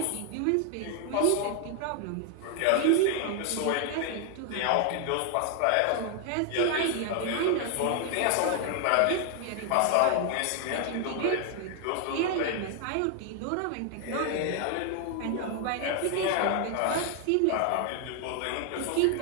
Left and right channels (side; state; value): both; different; correlation 0.00